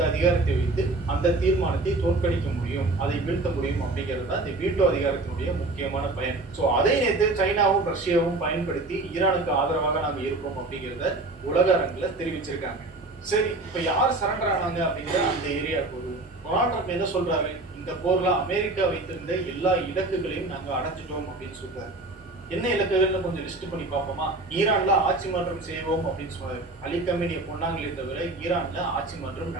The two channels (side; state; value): left; quieter; 3.0 dB